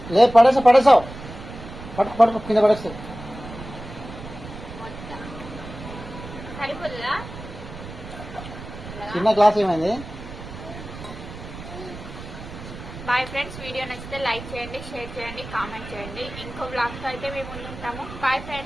లే పడేసావు పట్టుకు కింద పడేస్తావు. సరిపోతుందా? చిన్న గ్లాస్ ఏమైంది? Bye friends. వీడియో నచ్చితే లైక్ చేయండి, షేర్ చేయండి, కామెంట్ చేయండి. ఇంకో బ్లాగ్తో అయితే మేము ముందుంటాము. Bye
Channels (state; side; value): noise; right; rumble, 12 dB below the sound